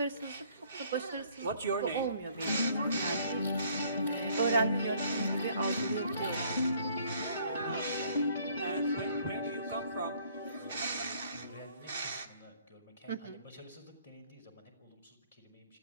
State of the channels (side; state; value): both; inverted; correlation -0.61